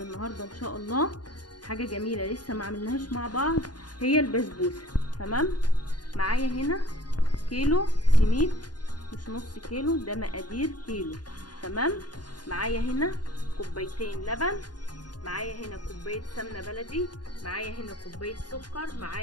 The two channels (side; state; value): right; late; 0.70 ms